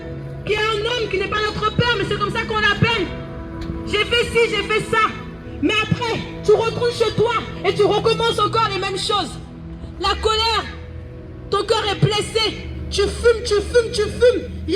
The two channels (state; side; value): identical; both; correlation 1.00